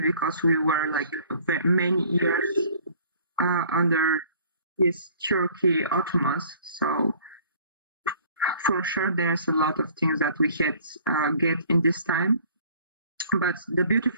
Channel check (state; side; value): inverted; both; correlation -0.54